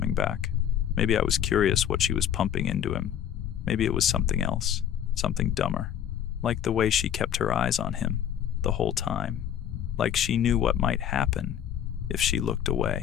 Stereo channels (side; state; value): right; quieter; 9.8 dB